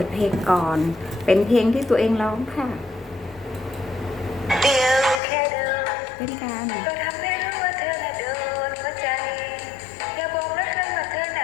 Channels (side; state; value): right; drops out; at 5.2 s